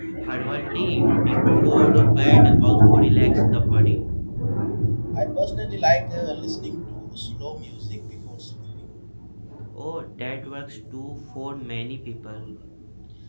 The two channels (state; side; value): inverted; both; correlation -1.00